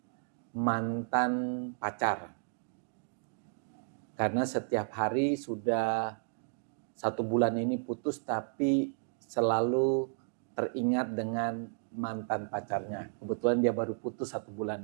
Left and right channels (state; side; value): silent; left; digital silence